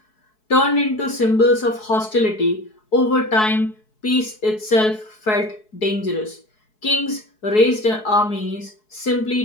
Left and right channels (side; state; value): right; late; 4.7 ms